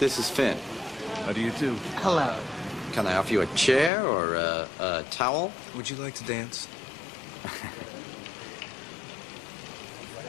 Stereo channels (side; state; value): right; drops out; at 3.9 s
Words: is Finn. How do you do? Hello. Can I offer you a chair or a towel? Would you like to dance?